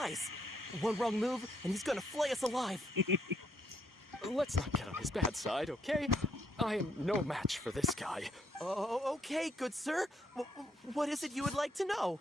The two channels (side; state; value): both; normal; correlation 0.72